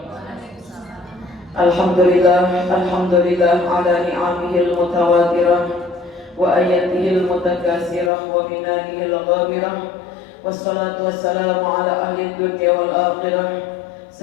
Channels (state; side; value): drops out; right; at 8.1 s